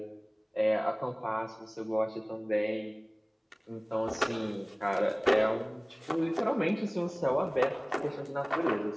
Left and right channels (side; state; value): both; identical; correlation 1.00